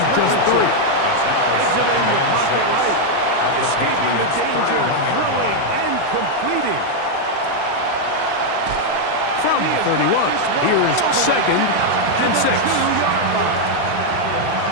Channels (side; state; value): both; different; correlation 0.00